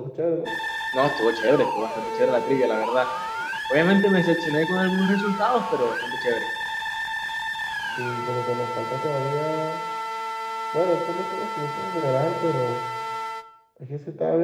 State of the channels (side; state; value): both; identical; correlation 1.00